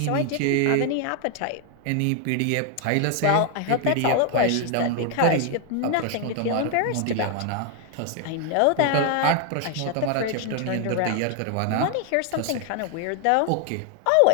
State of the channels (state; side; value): different; both; correlation 0.00